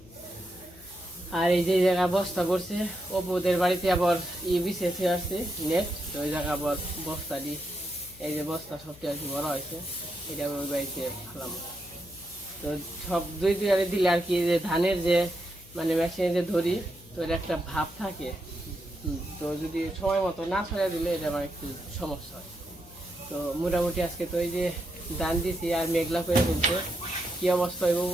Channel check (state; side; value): noise; left; hum, 22 dB below the sound